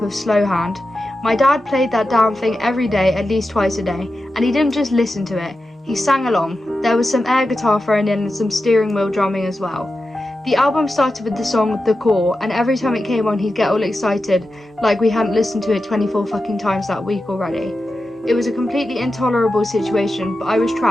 of Slow Hand. My dad played that damn thing every day, at least twice a day, and he didn't just listen to it, he sang along. There was some air guitar thrown in and some steering wheel drumming as well. The album started with the song The Core, and every time it came on he'd get all excited, like we hadn't listened to it 24 fucking times that week already. It was a completely intolerable situation, but I was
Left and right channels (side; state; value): both; normal; correlation 0.91